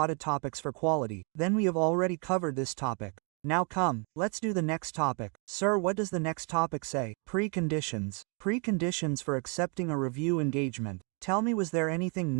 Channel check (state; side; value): quieter; left; 36.1 dB